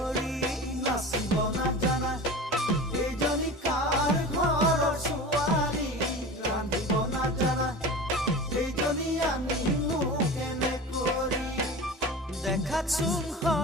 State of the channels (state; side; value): normal; both; correlation 0.33